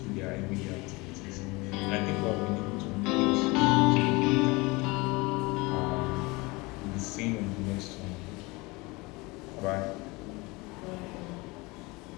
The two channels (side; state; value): right; quieter; 24.5 dB